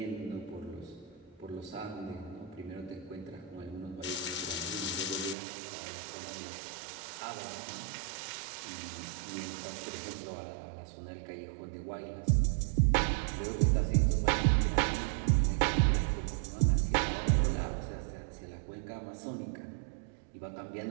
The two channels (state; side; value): drops out; left; at 5.4 s